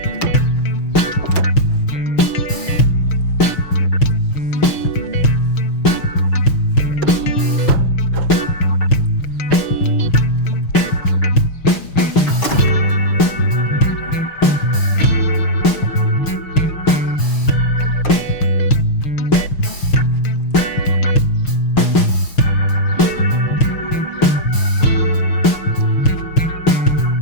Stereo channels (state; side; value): late; right; 6.4 ms